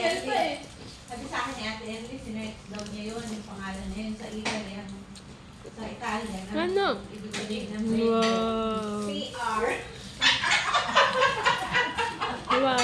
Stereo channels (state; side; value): identical; both; correlation 1.00